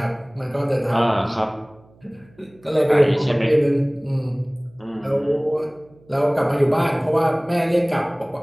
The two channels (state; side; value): noise; right; hum, 29 dB below the sound